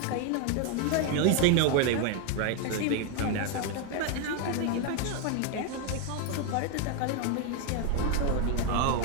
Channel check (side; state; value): both; different; correlation 0.01